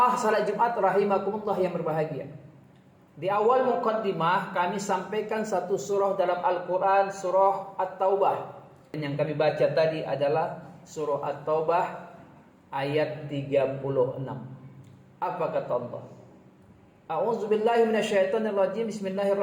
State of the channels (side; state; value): both; identical; correlation 1.00